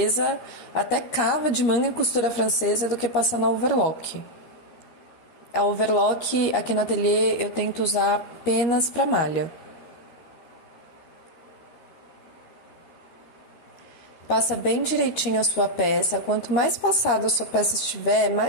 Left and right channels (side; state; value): right; late; 13 ms